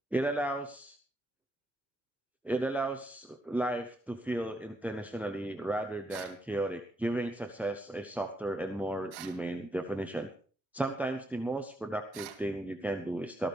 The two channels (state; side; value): normal; both; correlation 0.78